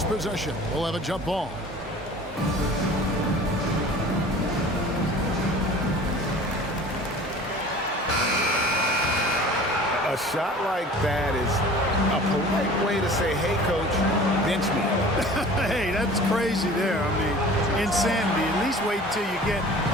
possession. We'll have a jump ball. A shot like that is a polite way to say, hey, coach, bench me. Hey, that's crazy there. I mean, insanity. At least wait until you get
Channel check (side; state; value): both; normal; correlation 0.43